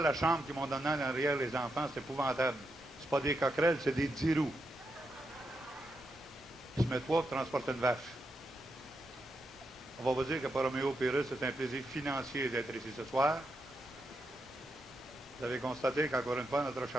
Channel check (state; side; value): normal; both; correlation 0.84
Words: la chambre qu'ils m'ont donnée en arrière, les enfants, c'est épouvantable. C'est pas des coquerelles, c'est des 10 roues. Ils se mettent trois pour transporter une vache. On va vous dire que pour Roméo Pérus, c'est un plaisir financier d'être ici ce soir. Vous avez constaté qu'encore une fois, notre